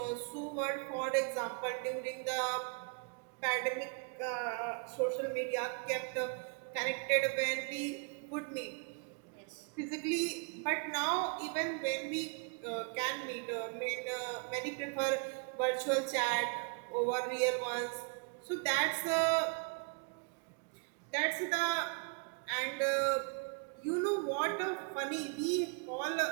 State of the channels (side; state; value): left; quieter; 36.9 dB